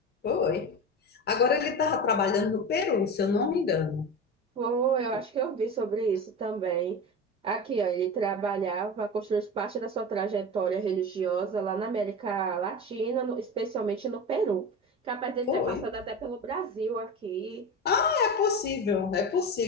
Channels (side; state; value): both; normal; correlation 0.25